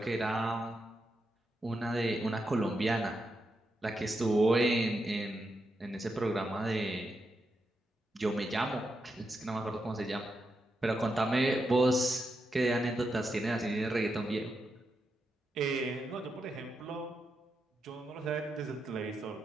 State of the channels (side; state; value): both; normal; correlation 0.85